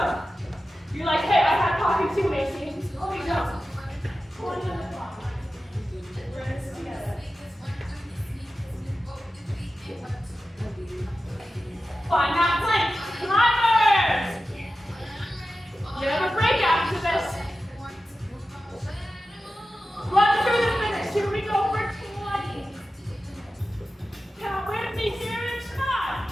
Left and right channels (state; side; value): normal; both; correlation 0.93